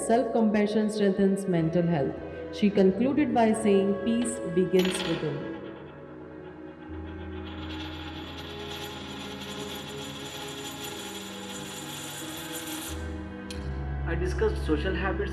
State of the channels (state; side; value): identical; both; correlation 1.00